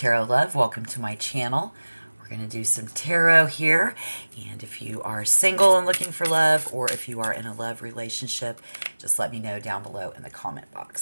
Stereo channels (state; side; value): inverted; both; correlation -1.00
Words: Love. Welcome to my channel. We're going to do some tarot here. And if you are single and looking for love, or if you are in a love relationship, just let me know down below in the comment box.